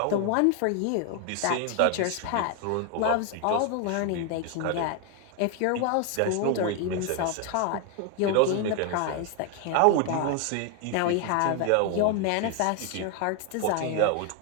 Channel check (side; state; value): both; different; correlation 0.01